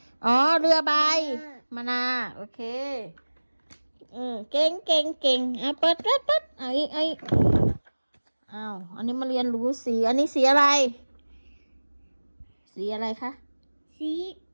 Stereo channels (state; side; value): inverted; both; correlation -1.00